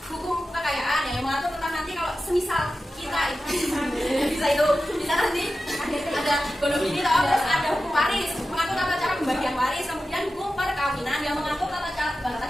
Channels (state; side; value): normal; both; correlation 0.93